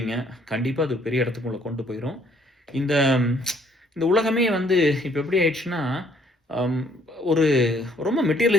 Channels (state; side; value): normal; both; correlation 0.64